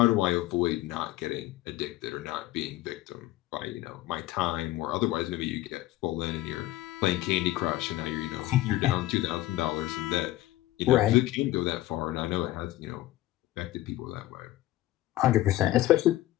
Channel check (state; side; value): quieter; right; 16.1 dB